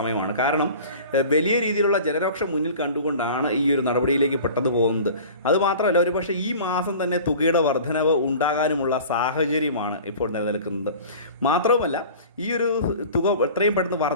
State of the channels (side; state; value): both; inverted; correlation -0.41